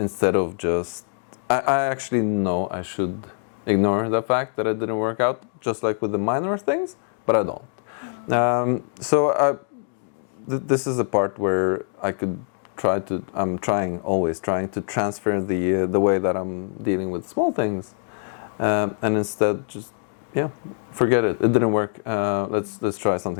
of just... I actually know I should ignore the fact that it didn't work out, just like with the minor things, but I don't. This is a part where I could always trying to transfer the way that I'm dealing with small things, and instead just forget it. It didn't work. Let's try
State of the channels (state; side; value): silent; right; digital silence